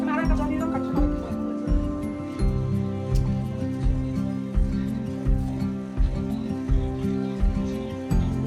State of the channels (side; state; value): both; identical; correlation 1.00